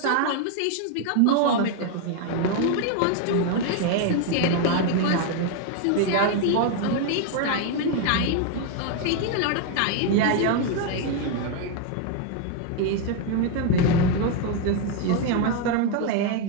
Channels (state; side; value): different; both; correlation 0.01